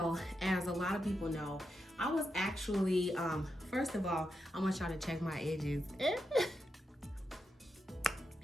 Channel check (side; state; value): both; normal; correlation 0.86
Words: as a lot of people know, I was actually first of all, I want y'all to check my edges.